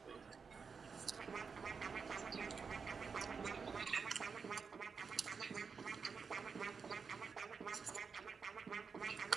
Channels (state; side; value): quieter; left; 5.5 dB